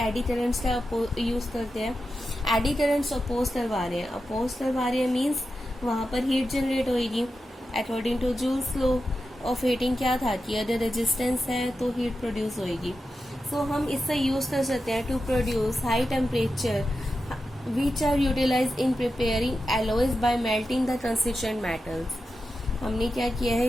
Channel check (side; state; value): both; normal; correlation 0.90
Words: करंट्स का यूज करते हैं। एडी करंट्स अपोज करवा रहे हैं, अपोज करवा रहे हैं मीन्स वहां पर हीट जनरेट होगी according to Joule's law of heating. क्या था कि अगर रेजिस्टेंस है तो हीट प्रोड्यूस होगी। सो हम इससे यूज कर सकते हैं to produce high temperature which are utilise in preparing alloys by melting the constituent metals. हमने क्या किया है